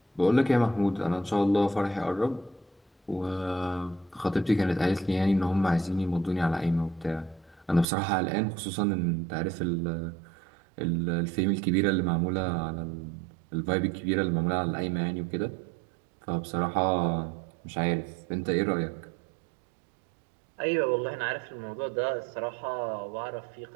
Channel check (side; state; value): left; drops out; at 7.9 s